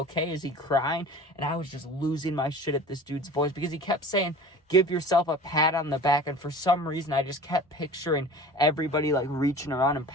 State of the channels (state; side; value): normal; both; correlation 0.40